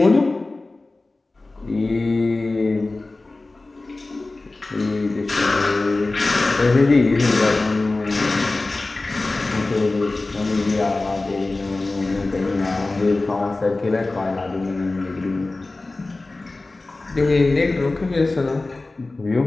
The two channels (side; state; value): right; quieter; 3.2 dB